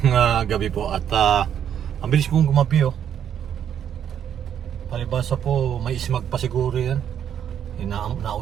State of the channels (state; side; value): quieter; left; 9.2 dB